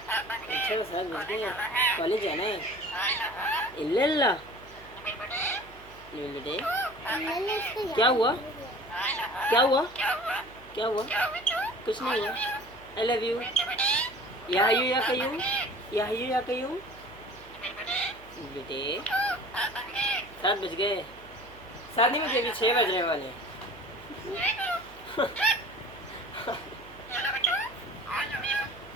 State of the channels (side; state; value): right; noise; hum, 22 dB below the sound